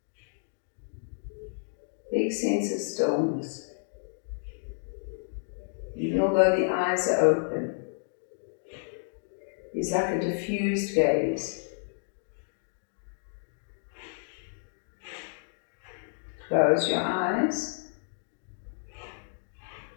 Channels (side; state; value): right; silent; digital silence